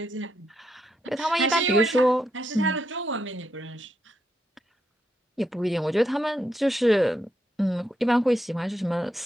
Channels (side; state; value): both; normal; correlation 0.80